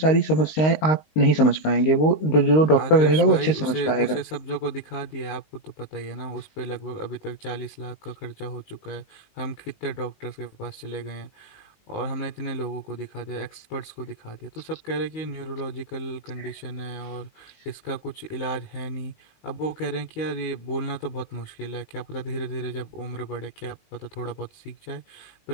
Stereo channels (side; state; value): right; late; 19 ms